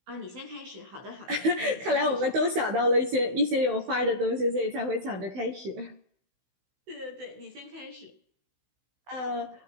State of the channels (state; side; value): late; left; 16 ms